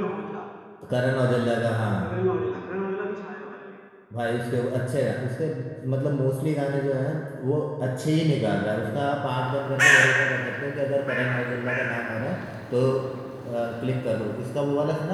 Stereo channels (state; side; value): identical; both; correlation 1.00